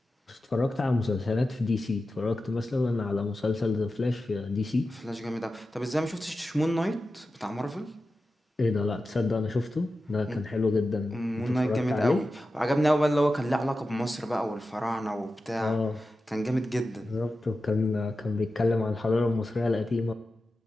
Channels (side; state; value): both; normal; correlation 0.92